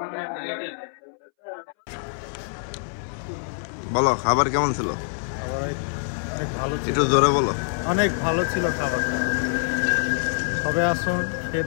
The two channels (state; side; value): silent; right; 62 dB below the other